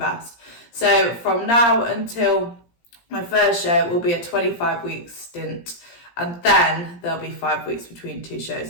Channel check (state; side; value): late; right; 17 ms